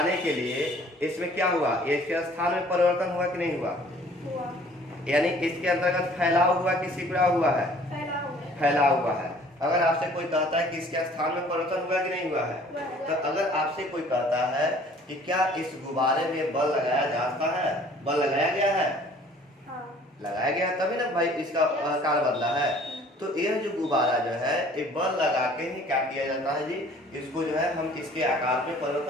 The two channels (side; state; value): both; normal; correlation 0.53